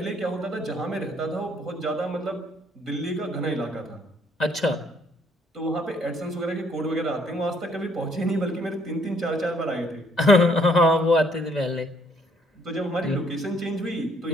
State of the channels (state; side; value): normal; both; correlation 0.66